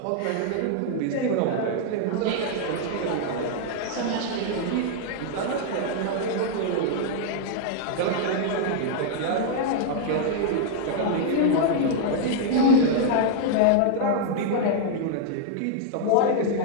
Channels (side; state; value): both; different; correlation -0.01